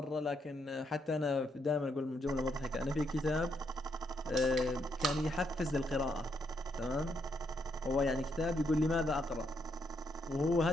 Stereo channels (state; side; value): normal; both; correlation 0.77